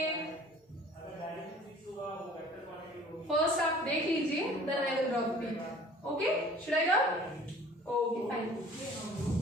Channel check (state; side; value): normal; both; correlation 0.49